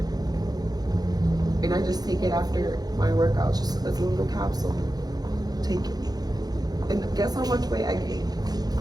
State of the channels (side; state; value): left; late; 0.19 ms